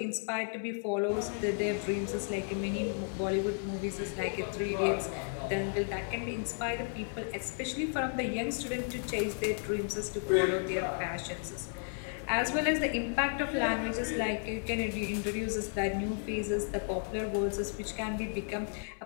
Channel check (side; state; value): right; silent; 55 dB below the other